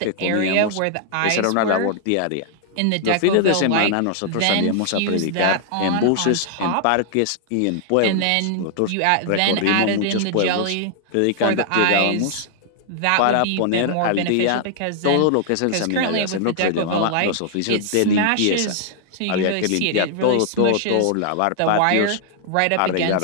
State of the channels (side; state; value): both; different; correlation -0.01